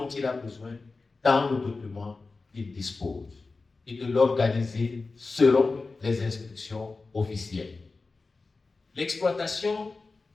il a besoin dans le document qu'il dispose et de l'organiser selon les instructions officielles. L'exploitation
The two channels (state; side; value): quieter; right; 3.9 dB